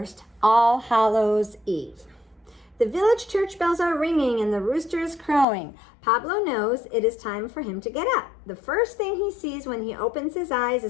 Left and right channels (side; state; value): right; drops out; at 5.5 s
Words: All Hallows Eve. The village church bells are ringing and the rooster is crowing. Pablo knows it is time for him to get up. The first thing he sees when he opens his eyes